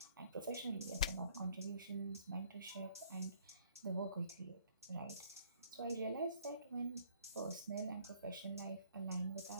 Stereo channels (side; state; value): both; inverted; correlation -0.61